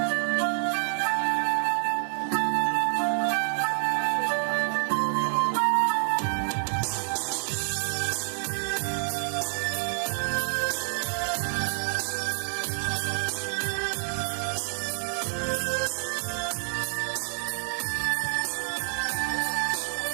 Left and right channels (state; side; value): silent; left; 59 dB below the other